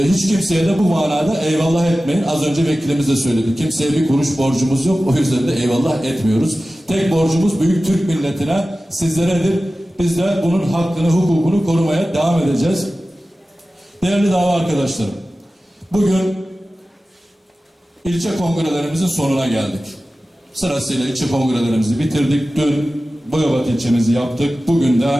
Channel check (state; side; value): normal; both; correlation 0.95